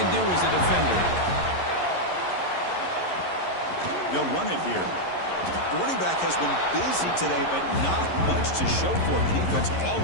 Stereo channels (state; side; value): late; right; 11 ms